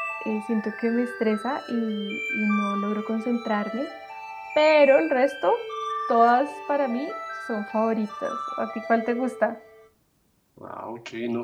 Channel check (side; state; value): both; identical; correlation 1.00